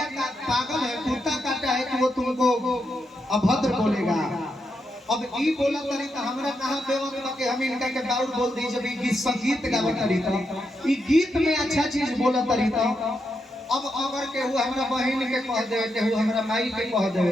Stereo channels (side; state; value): both; normal; correlation 0.83